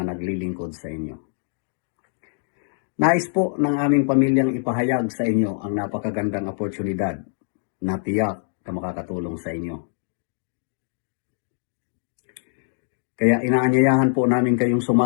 naglilingkod sa inyo. Nais po ng aming pamilyang ipahayag sa inyo ang napakagandang oportunidad na tiyak na makakatulong sa inyo. Kaya inaanyayahan po namin kayong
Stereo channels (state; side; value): silent; right; digital silence